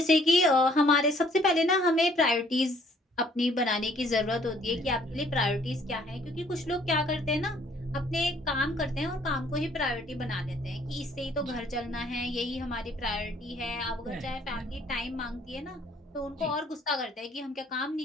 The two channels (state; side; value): normal; both; correlation 0.61